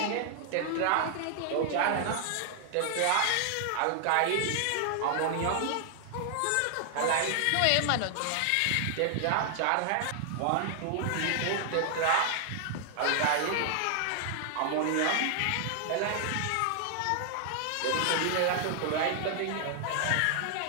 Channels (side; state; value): both; different; correlation 0.00